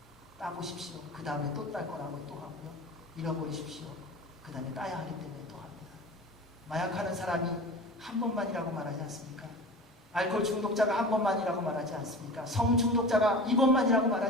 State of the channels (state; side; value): normal; both; correlation 0.35